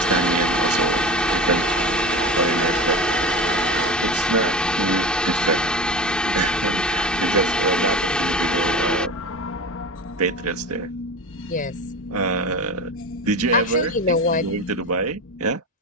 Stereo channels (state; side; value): normal; both; correlation 0.29